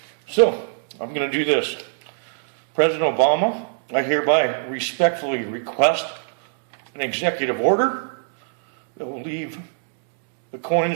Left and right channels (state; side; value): silent; left; digital silence